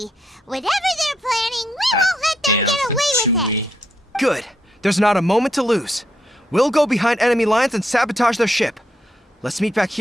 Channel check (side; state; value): both; normal; correlation 0.77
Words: Whatever they're planning, we won't let them get away with it. Good. There's not a moment to lose. We'll go behind enemy lines and sabotage their ship. Let's meet back